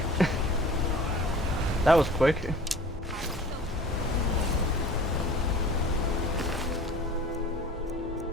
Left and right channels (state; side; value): normal; both; correlation 0.43